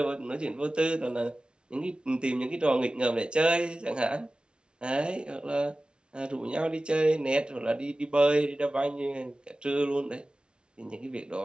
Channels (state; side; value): late; left; 0.056 ms